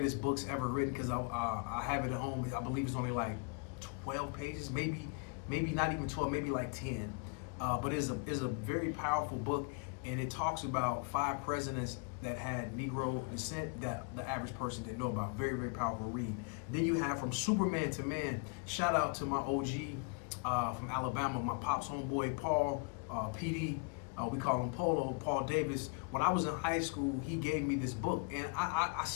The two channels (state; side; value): quieter; right; 35.9 dB